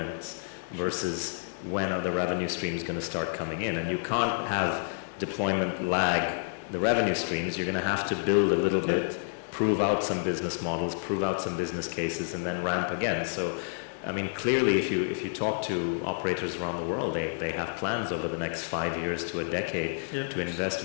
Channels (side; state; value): right; silent; digital silence